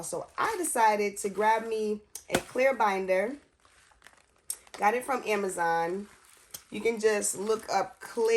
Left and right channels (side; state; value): both; identical; correlation 1.00